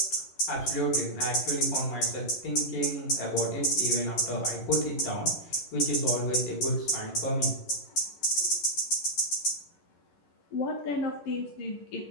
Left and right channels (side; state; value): right; late; 11 ms